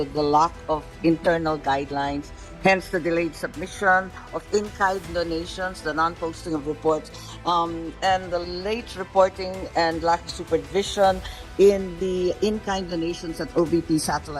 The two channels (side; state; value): both; identical; correlation 1.00